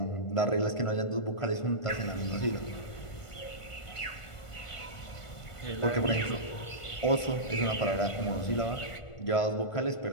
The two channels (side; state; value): right; late; 1.5 ms